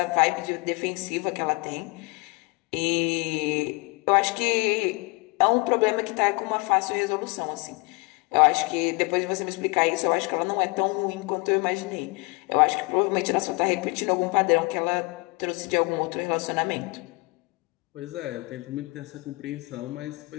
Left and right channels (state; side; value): quieter; right; 27.9 dB